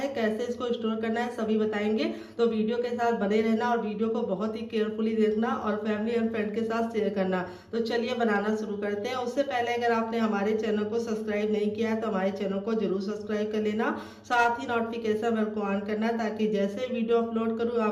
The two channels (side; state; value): both; identical; correlation 1.00